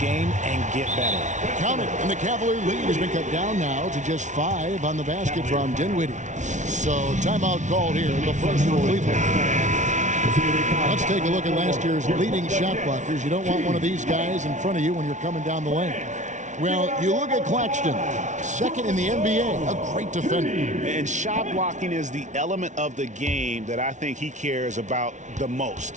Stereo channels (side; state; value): left; late; 0.36 ms